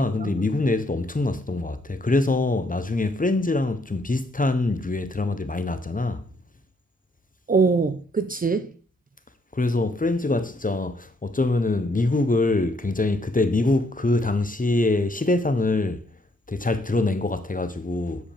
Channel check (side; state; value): both; normal; correlation 0.70